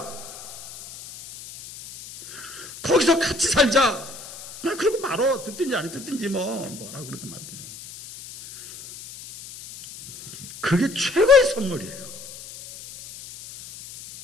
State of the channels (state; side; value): noise; left; hiss, 15 dB below the sound